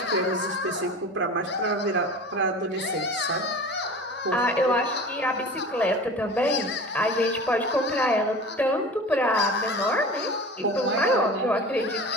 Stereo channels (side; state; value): both; normal; correlation 0.37